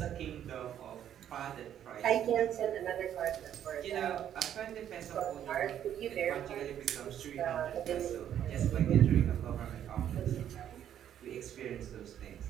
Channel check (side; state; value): left; quieter; 10.2 dB